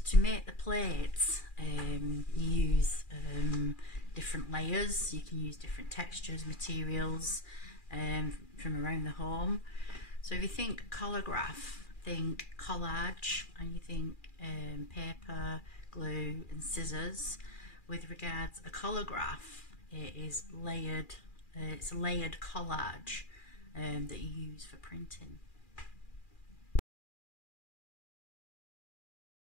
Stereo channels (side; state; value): right; late; 2.4 ms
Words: to make the plates, you use different layers. You can use different textures, materials from around the home. So if you think collagraph, think collage, and you think paper, glue and scissors. With regards a collagraph, it is layered. It's a layered collage that you use for printing.